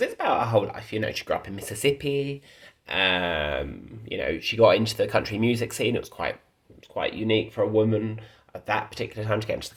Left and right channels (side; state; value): both; identical; correlation 1.00